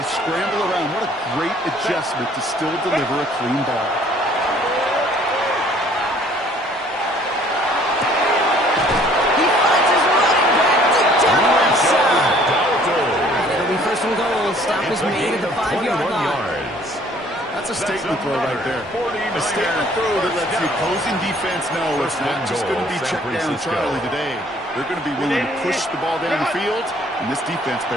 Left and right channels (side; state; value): both; normal; correlation 0.57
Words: scramble around. What a great adjustment to still deliver a clean ball. He finds his running back deep down the left side. And it'll be 1st and goal. Stop is made at the 5-yard line. That's a statement throw right there. A statement throw that lets the opposing defense know it's not just going to be check down Charlie today. They're going to be willing to push the ball down the field, and this defense